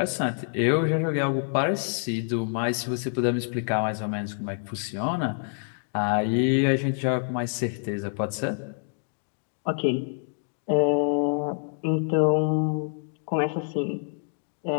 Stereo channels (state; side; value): silent; right; digital silence